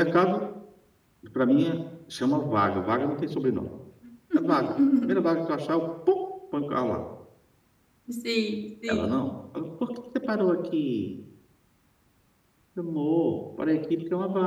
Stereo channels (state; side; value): identical; both; correlation 1.00